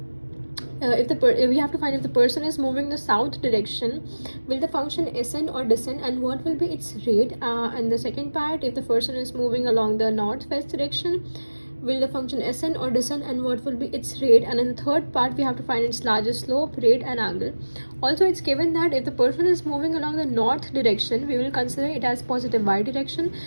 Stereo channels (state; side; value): inverted; both; correlation -1.00